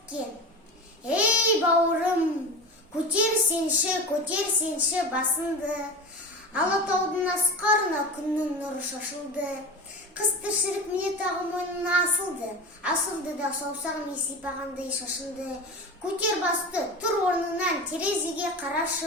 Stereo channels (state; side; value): normal; both; correlation 0.28